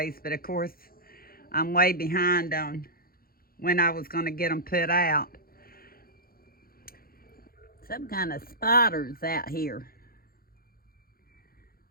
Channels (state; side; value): late; right; 0.43 ms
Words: but of course I'm way behind on when I was going to get them put out. Some kind of spiders out here.